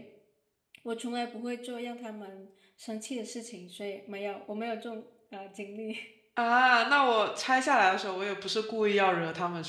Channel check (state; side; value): identical; both; correlation 1.00